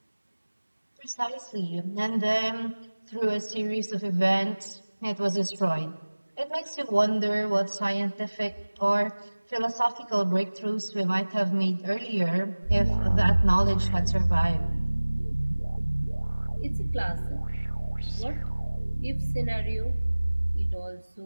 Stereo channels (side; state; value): both; inverted; correlation -1.00